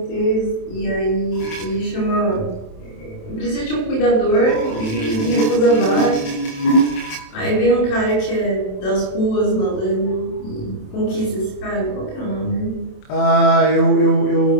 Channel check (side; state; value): right; late; 27 ms